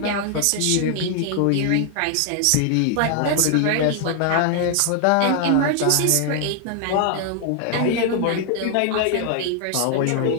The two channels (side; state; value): both; different; correlation 0.00